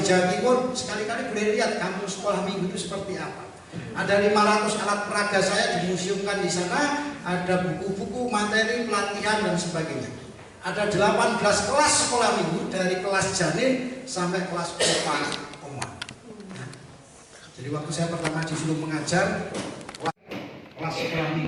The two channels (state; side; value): identical; both; correlation 1.00